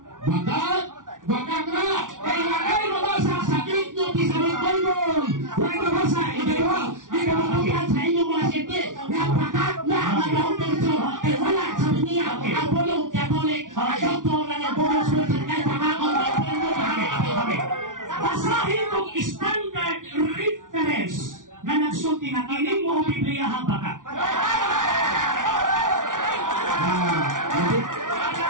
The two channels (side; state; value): left; late; 0.88 ms